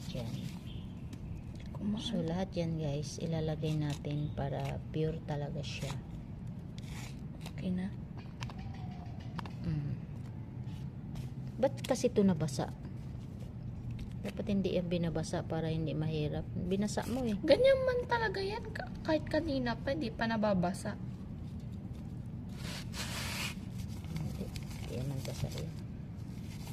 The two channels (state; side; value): identical; both; correlation 1.00